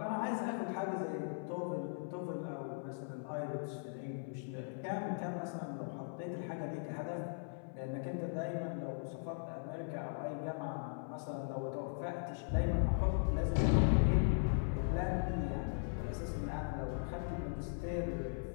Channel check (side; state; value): right; silent; 52 dB below the other